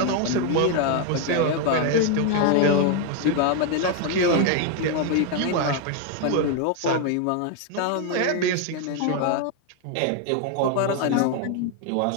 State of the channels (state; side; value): different; both; correlation 0.01